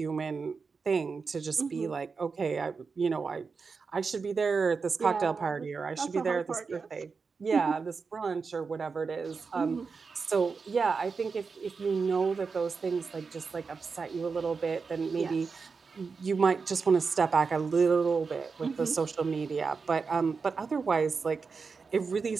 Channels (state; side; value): quieter; left; 5.0 dB